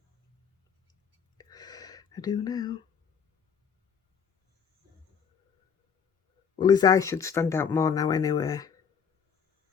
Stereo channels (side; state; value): right; quieter; 6.9 dB